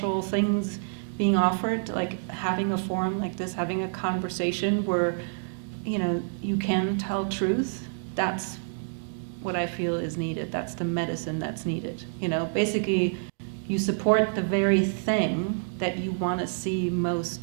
things being offered, like having a forum like this, having a conversation where, you can tell truth, that's what I feel is needed. That's the medicine that's needed. Basically, you support the very thing that you want to see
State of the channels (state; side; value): silent; left; digital silence